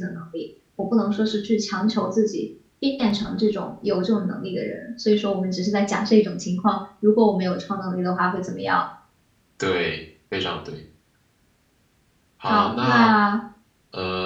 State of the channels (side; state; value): both; identical; correlation 1.00